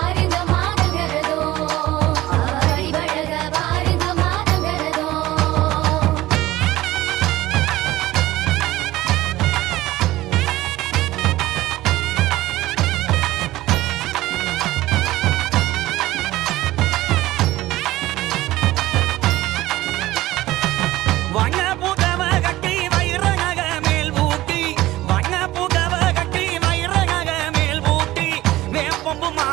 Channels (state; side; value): quieter; left; 16.8 dB